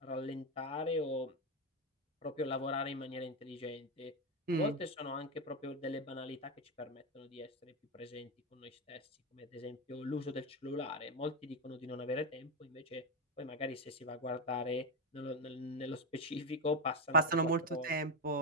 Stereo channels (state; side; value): normal; both; correlation 0.09